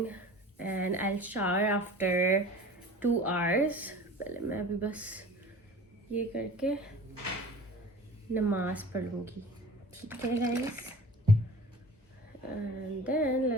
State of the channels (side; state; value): both; normal; correlation 0.41